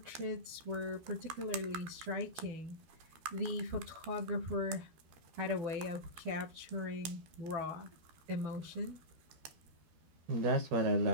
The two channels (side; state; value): left; late; 12 ms